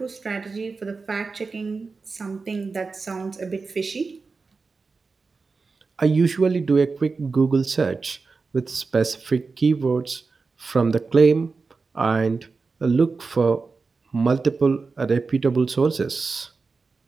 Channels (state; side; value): quieter; left; 4.3 dB